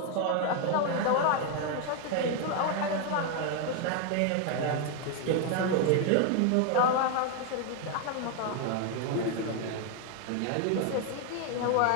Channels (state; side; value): different; both; correlation 0.01